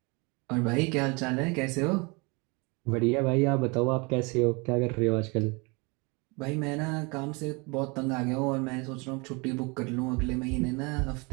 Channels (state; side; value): quieter; left; 28.9 dB